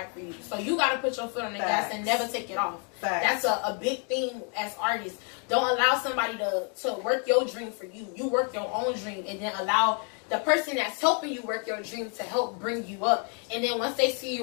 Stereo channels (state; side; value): quieter; right; 40.0 dB